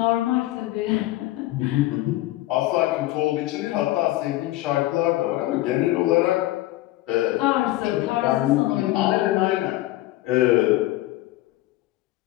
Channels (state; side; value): quieter; right; 16.9 dB